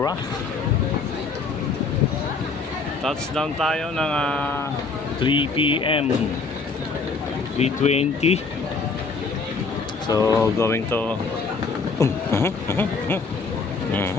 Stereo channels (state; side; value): quieter; right; 4.5 dB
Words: Touchdown tayo ng 3 p.m. 3:20. So, going to...